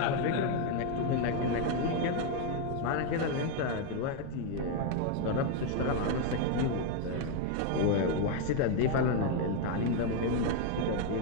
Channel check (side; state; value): both; different; correlation 0.01